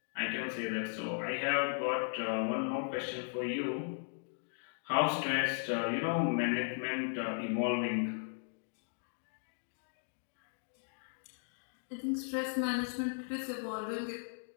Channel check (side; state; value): right; silent; digital silence